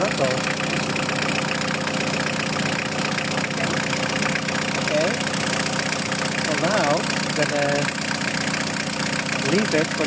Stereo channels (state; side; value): identical; both; correlation 1.00